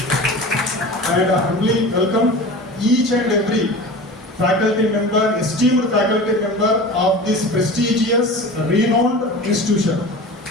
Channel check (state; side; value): normal; both; correlation 0.34